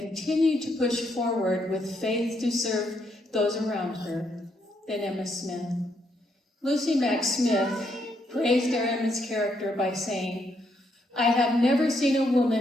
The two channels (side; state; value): both; normal; correlation 0.76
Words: to push forward with faith to serve those around her than Emma Smith. Lucy Mack Smith praised their Emma's character by saying, "I have never seen a